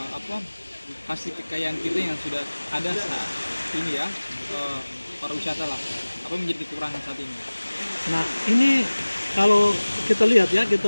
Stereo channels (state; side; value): inverted; both; correlation -1.00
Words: hasil kekayaan kita yang sudah ada saat ini, ya, pariwisata lah, apa yang menjadi kekurangan saat ini? Nah, ini kalau kita lihat, ya, kita